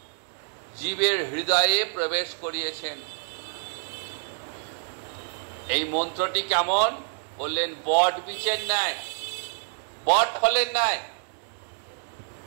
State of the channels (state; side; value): silent; left; digital silence